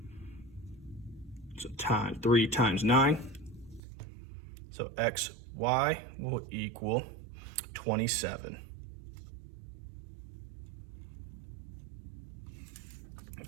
So 3 times 9. So XY will equal 27.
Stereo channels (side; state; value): left; drops out; at 3.8 s